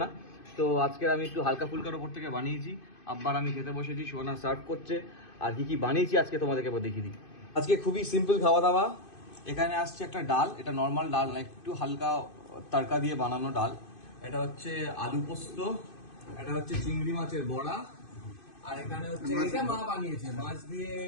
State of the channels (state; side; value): late; right; 2.5 ms